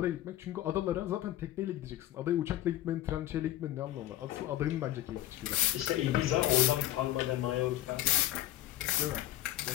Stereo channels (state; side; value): quieter; right; 14.0 dB